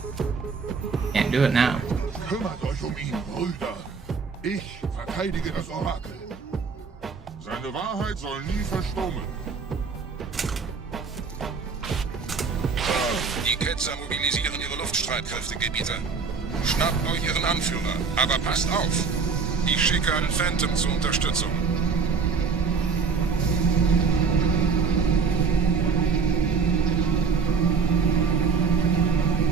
Can't do it now. Kümmert euch ihn, Brüder. Ich verteidige das Orakel. Seine Wahrheit soll nie verstummen. Die Ketzer mobilisieren ihre Luftstreitkräfte, Gebieter. Schnappt euch ihren Anführer, aber passt auf. Ich schicke einen Phantom zur Unterstützung.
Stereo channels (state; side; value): quieter; left; 5.2 dB